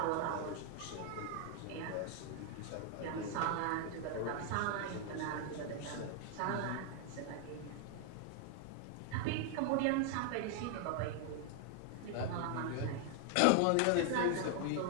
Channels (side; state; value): both; different; correlation 0.00